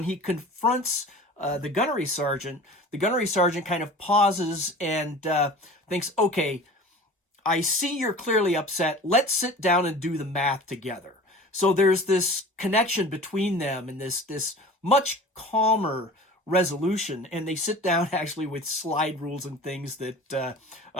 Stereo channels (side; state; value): both; normal; correlation 0.40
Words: he confronts the gunnery sergeant kind of pauses and thinks, okay, I see you're clearly upset. Let's sit down and do the math together. So there's this connection between them and this much calmer resolution. And they sit down actually with slide rules and things that